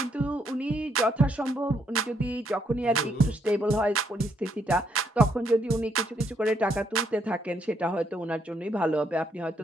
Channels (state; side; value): normal; both; correlation 0.73